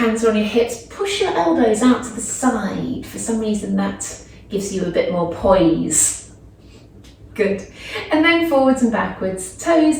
are on your hips, push your elbows out to the side. For some reason that gives you a bit more poise. Good. And then forwards and backwards,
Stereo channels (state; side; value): identical; both; correlation 1.00